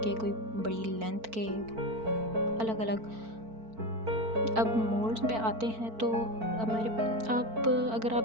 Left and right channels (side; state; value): left; late; 4.5 ms